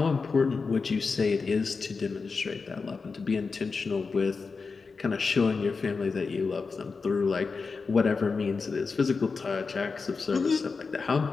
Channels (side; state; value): right; quieter; 4.6 dB